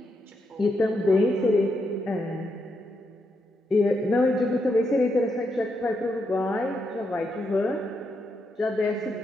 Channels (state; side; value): normal; both; correlation 0.81